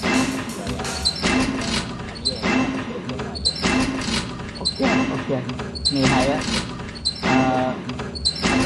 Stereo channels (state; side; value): identical; both; correlation 1.00